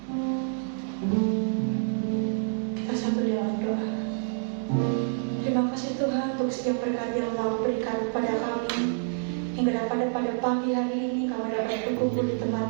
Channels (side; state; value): left; silent; digital silence